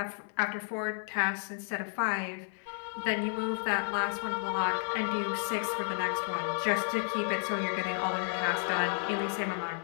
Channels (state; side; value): silent; right; 56 dB below the other